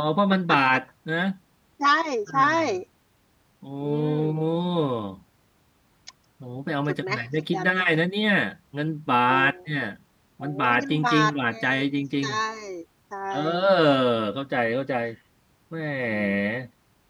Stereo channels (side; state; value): both; identical; correlation 1.00